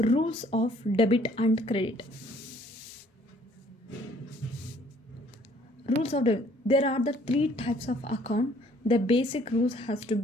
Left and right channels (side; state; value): both; normal; correlation 0.60